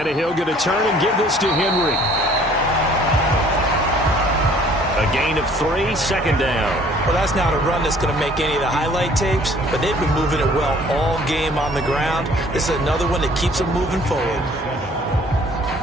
going to turn and give this to Henry. A gain of 3, 2nd down. Well, that's not a run that's going to make any of the highlight tapes, but they've been moving it well all game on the ground. This is another one that keeps them moving forward.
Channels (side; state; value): both; normal; correlation 0.56